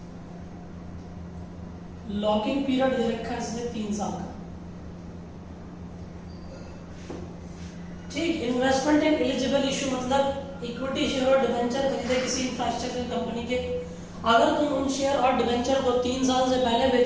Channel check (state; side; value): identical; both; correlation 1.00